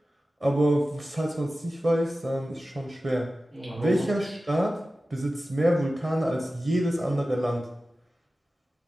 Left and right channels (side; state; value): both; normal; correlation 0.95